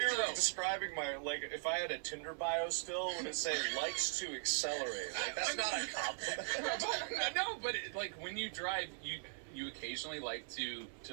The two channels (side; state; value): left; silent; 51 dB below the other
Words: though. describing my, like, if I had a Tinder bio still, would it say likes to accelerate? Like, that's not a compliment. No, but like when you drive, you occasionally like to